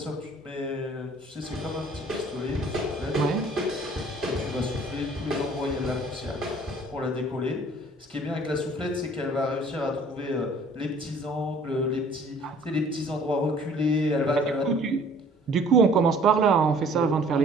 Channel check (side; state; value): both; normal; correlation 0.54